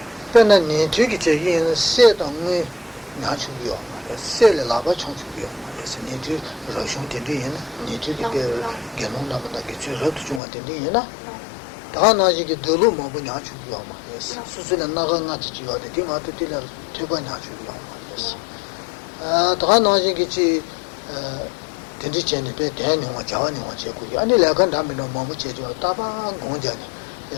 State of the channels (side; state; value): right; drops out; at 10.4 s